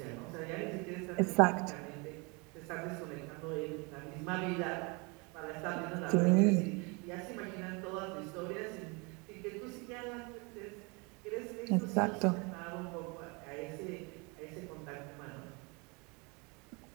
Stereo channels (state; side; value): quieter; left; 29.6 dB